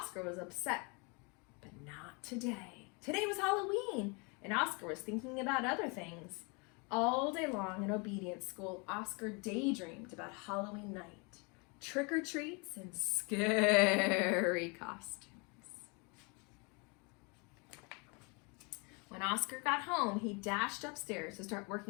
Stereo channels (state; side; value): quieter; right; 31.4 dB